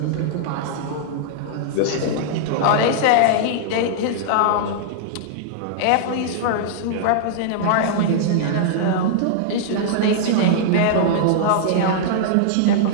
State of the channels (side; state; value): both; different; correlation -0.01